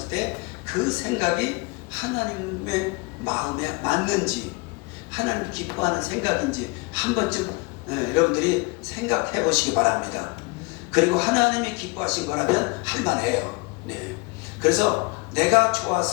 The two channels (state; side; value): quieter; right; 27.5 dB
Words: 때 그 생각이 하나님의 마음에 맞는지 하나님 기뻐하는 생각인지 한 번쯤 여러분들이 생각해 보시기 바랍니다. 그리고 하나님이 기뻐하신 거라면 할만해요. 네. 그래서 내가